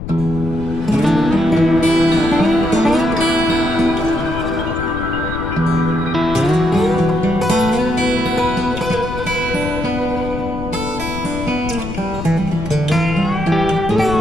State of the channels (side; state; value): left; noise; rumble, 8 dB below the sound